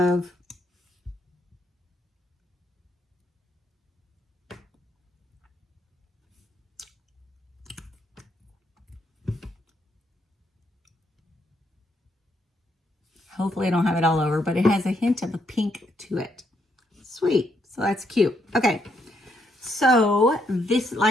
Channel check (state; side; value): normal; both; correlation 0.75